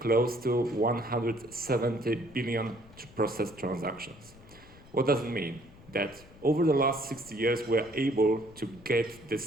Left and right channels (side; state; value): left; noise; rumble, 22 dB below the sound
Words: to 170 billion processed transactions. What does it mean? That over the last 60 years, we're able to get